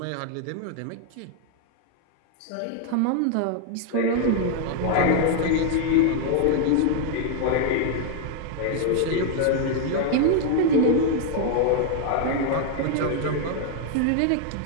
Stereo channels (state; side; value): different; both; correlation 0.00